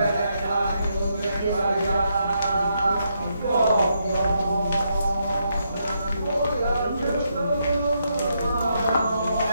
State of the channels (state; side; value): inverted; both; correlation -0.79